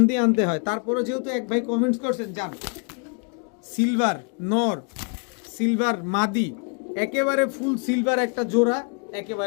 দিয়ে আনতে হয়, তারপরে যেহেতু এক ভাই কমেন্টস করছেন যান সিলভার নর সিলভার মাদি একেবারে ফুল সিলভার একটা জোড়া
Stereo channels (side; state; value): right; quieter; 38.4 dB